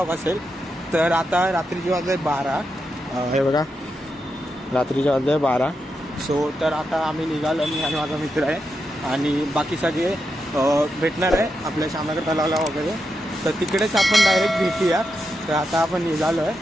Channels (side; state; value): both; normal; correlation 0.86